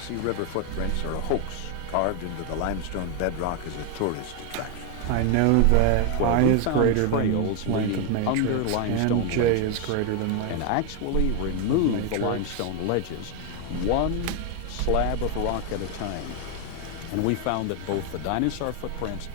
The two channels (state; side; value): different; both; correlation 0.01